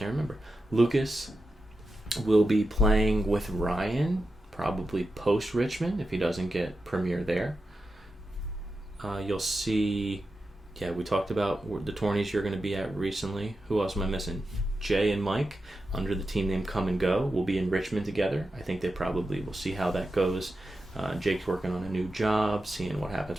remember. Lucas will be playing with Ryan, probably post Richmond if he doesn't get premier there. You'll see, we talked about the tourneys you're going to be at recently. Who else am I missing? Jay and Mike, under the team name Come and Go, will be in Richmond together. I think they probably will see how that goes. Jake's working on a new job, seeing what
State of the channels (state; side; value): normal; both; correlation 0.90